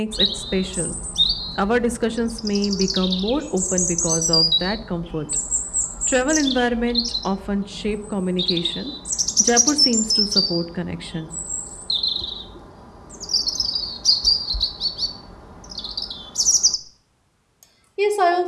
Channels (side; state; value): both; identical; correlation 1.00